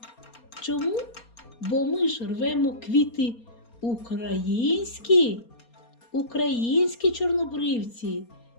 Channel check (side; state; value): right; late; 4.3 ms